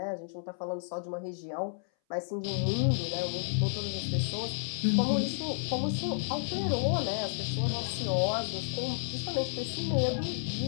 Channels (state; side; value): silent; right; 57 dB below the other